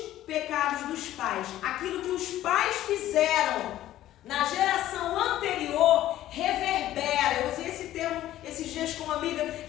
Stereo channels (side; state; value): right; quieter; 13.6 dB